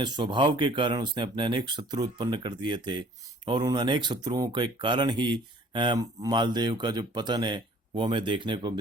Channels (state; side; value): normal; both; correlation 0.54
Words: स्वभाव के कारण उसने अपने अनेक शत्रु उत्पन्न कर दिए थे और उन अनेक शत्रुओं के कारण ही मालदेव का जो पतन है वो हमें देखने को